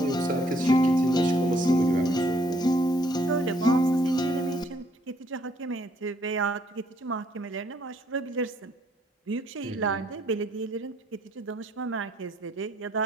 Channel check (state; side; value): normal; both; correlation 0.67